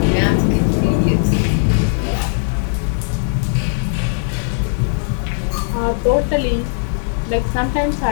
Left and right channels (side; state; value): right; silent; digital silence